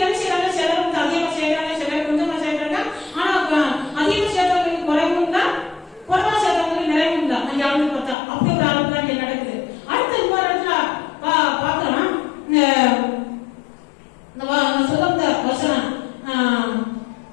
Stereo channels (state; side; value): drops out; right; at 8.2 s